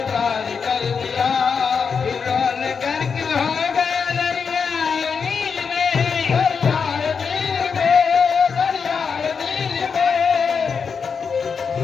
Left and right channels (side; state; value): right; quieter; 5.9 dB